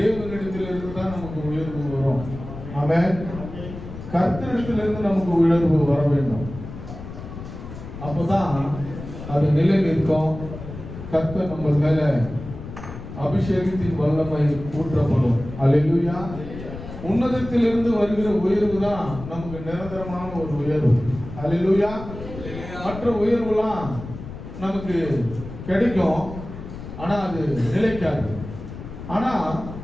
இருந்து தான் நமக்கு உயர்வு வரும். ஆமென். கர்த்தரிடத்திலிருந்து நமக்கு உயர்வு வர வேண்டும். அப்பதான் அது நிலை நிற்கும். கர்த்தர் நம்ம மேல அபிஷேகத்தின் வல்லமை ஊற்றப்படும். அல்லேலூயா. உன்னதத்திலிருந்து வருகிற உயர்வு தான் நமக்கு நிரந்தரமான ஒரு உயர்வு. அல்லேலூயா. மற்ற உயர்வுலாம் நமக்கு கிடைக்கும், ஆனா அது நிலைக்காது. ஆனா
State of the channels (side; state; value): left; noise; rumble, 11 dB below the sound